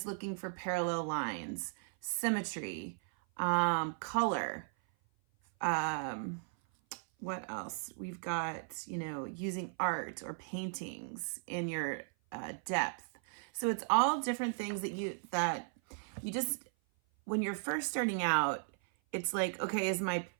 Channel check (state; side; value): silent; left; 54 dB below the other